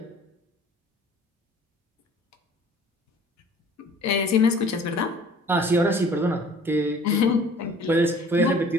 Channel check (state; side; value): normal; both; correlation 0.50